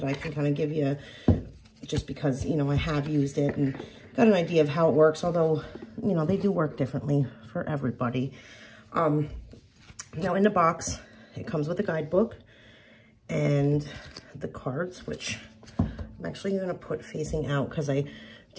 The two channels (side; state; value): both; identical; correlation 1.00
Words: I can kind of give you just because, you know, I have used it and got an idea of how it works, although, you know, they do work differently for everybody. Now in the box, it comes with a guidebook and the cards, which I'm actually going to put facing out because I